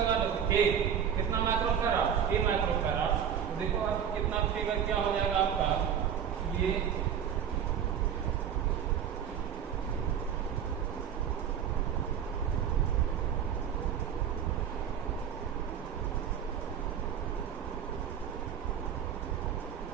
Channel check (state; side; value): quieter; left; 8.5 dB